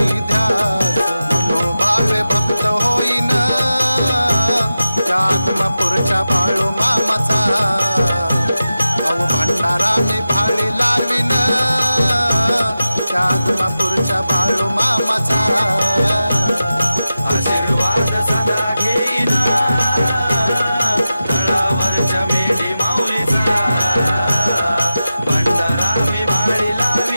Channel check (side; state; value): both; inverted; correlation -0.93